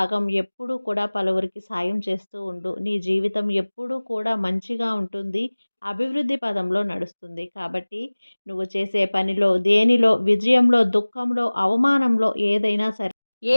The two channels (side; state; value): both; inverted; correlation -1.00